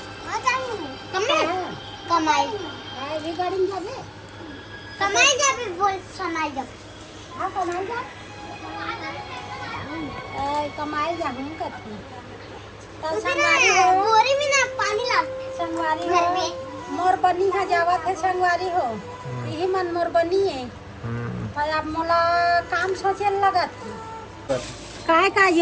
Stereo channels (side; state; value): both; identical; correlation 1.00